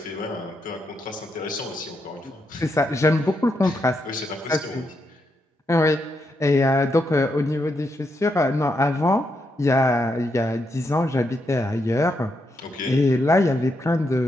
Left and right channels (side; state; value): both; normal; correlation 0.81